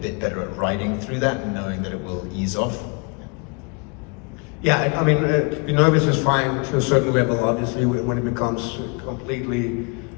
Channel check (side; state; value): right; quieter; 31.7 dB